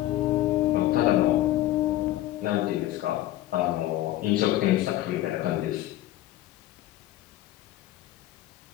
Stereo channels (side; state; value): right; quieter; 14.8 dB